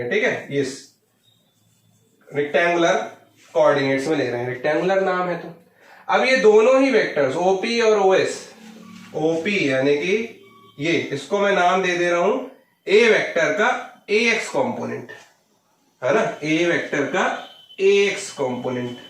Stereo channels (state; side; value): identical; both; correlation 1.00